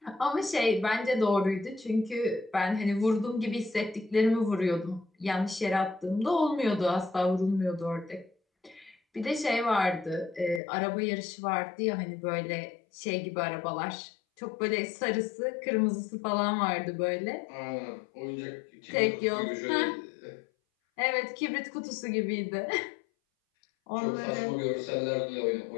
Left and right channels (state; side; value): drops out; right; at 10.6 s